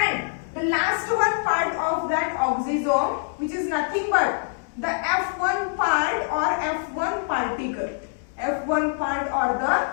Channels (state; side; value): silent; right; digital silence